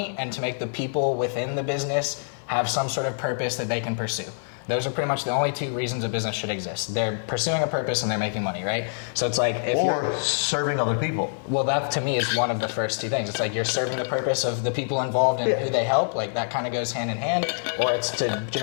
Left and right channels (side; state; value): right; silent; digital silence